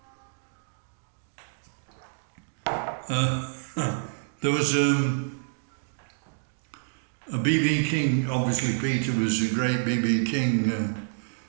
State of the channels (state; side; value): silent; left; digital silence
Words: There was a B.B. King. Obviously Peter was a great B.B. King